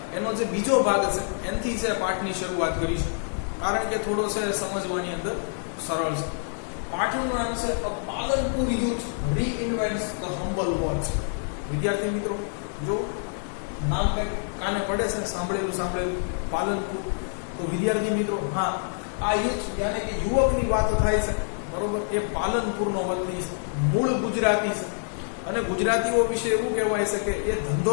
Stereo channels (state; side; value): silent; right; 58 dB below the other